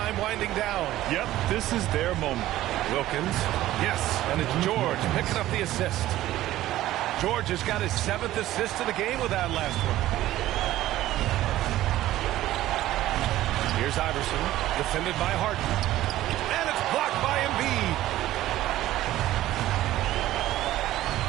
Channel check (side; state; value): left; quieter; 14.8 dB